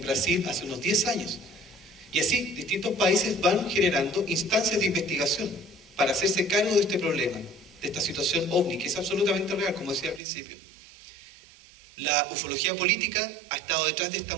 Brasil hace unos 10 años. Y así, distintos países van generando instancias de investigación para hacerse cargo de este problema, de esta situación ovni, que es absolutamente real, como decía al principio. La ufología política ha estado detrás de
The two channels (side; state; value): left; drops out; at 10.2 s